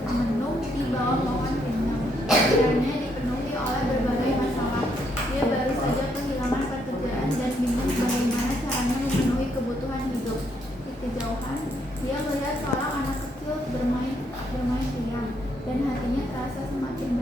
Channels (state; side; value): normal; both; correlation 0.74